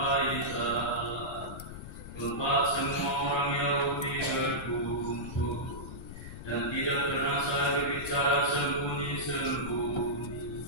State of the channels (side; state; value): left; noise; rumble, 11 dB below the sound